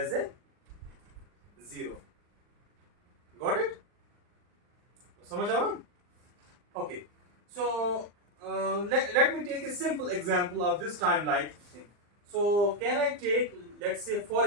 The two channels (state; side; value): late; left; 39 ms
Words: than 0. Got it? समझ आया? Okay. So let me take a simple example of this time-like thing. So can I take, let's say for